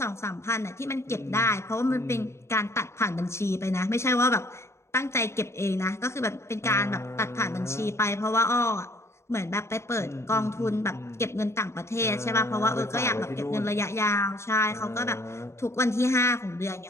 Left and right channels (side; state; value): right; late; 0.13 ms